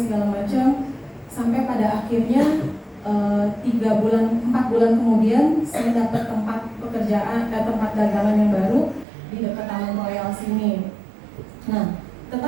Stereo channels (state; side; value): drops out; left; at 9.1 s